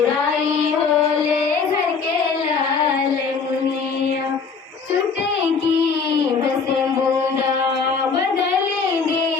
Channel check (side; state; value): right; quieter; 5.3 dB